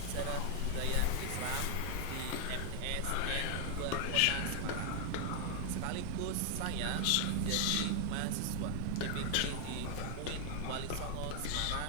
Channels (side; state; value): both; different; correlation 0.00